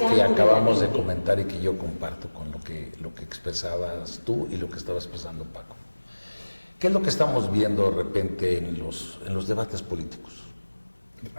cercano acabamos la de gente. comentar y que yo comparto con lo que expresabas tú y lo que estaba expresando Paco. ¿Qué es lo que estamos viendo de repente en los debates políticos?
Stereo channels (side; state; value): both; inverted; correlation -1.00